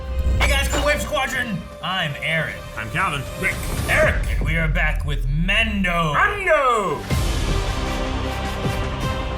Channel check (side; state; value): both; identical; correlation 1.00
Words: Hey guys, cool Wave Squadron! I'm Aaron. I'm Calvin. Rick. Eric. And we are back with Mando.